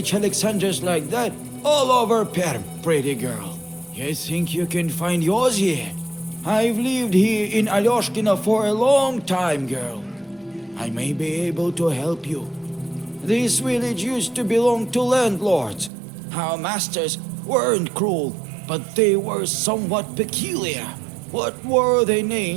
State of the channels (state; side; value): drops out; left; at 15.9 s